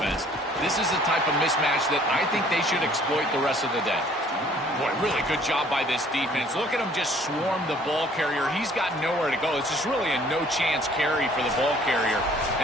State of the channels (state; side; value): normal; both; correlation 0.57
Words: This is the type of mismatch that I think they should exploit the rest of the day. Boy, really good job by this defense. Look at him just swarm the ball carrier. He's got nowhere to go. It's just really a no-chance carry for the ball carrier,